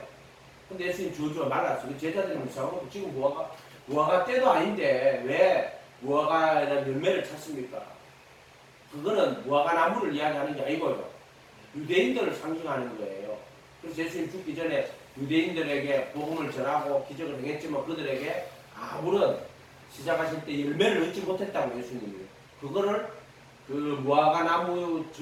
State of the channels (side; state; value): both; identical; correlation 1.00